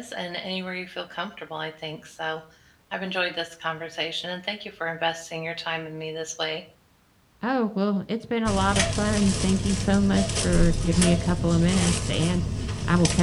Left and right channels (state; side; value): identical; both; correlation 1.00